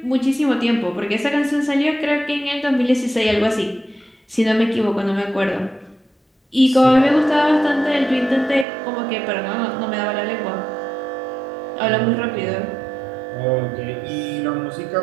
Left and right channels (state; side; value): drops out; left; at 8.7 s